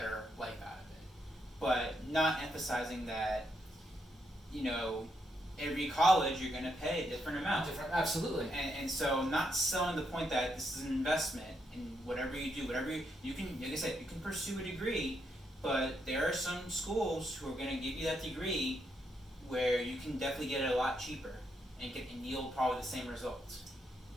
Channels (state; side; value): normal; both; correlation 0.79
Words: life out of it, but not emphasizing that, you know, every college you're going to pay a different amount. Absolutely. And so not selling the point that this is an investment in whatever you do, whatever you can, like I said, you can pursue a degree, but there are some schools who are going to give you that degree where you can definitely get it a lot cheaper and yield probably the same results.